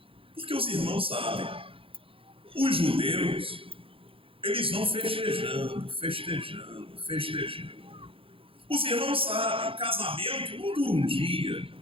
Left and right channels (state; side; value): late; left; 0.26 ms